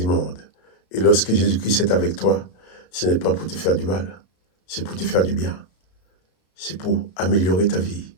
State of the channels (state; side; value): late; right; 33 ms